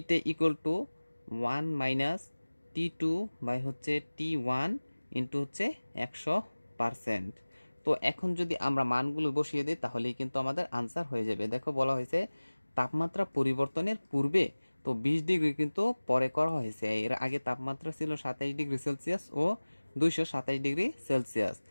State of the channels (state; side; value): inverted; both; correlation -1.00